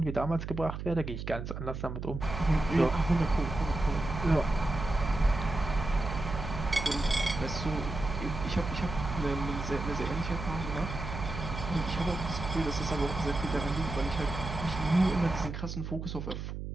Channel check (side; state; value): right; noise; hum, 6 dB below the sound